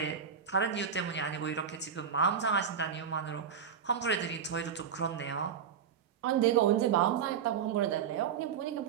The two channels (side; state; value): left; quieter; 7.4 dB